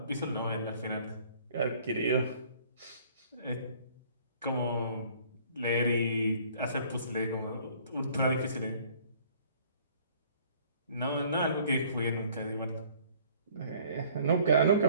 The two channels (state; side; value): inverted; both; correlation -0.56